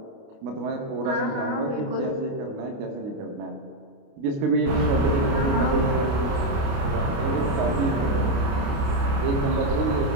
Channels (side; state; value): left; late; 29 ms